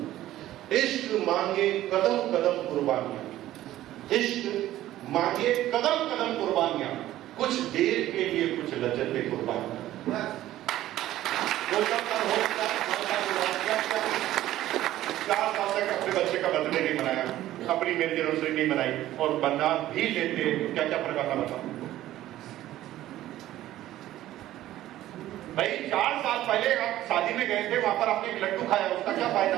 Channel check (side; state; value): left; quieter; 14.2 dB